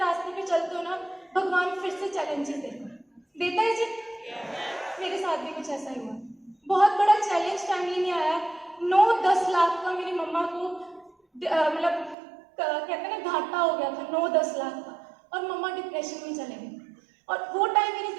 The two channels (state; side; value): drops out; left; at 12.2 s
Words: पे चलते हो ना, भगवान फिर से चैलेंजेस देता है जी। मेरे साथ भी कुछ ऐसा ही हुआ। बहुत बड़ा चैलेंज फैमिली में आया, 9-10 लाख का मेरी मम्मा को मतलब कहते हैं ना घाटा हो गया था, 9-10 लाख का, और मम्मा डिप्रेशन में चले गए। और वो टाइम मेरी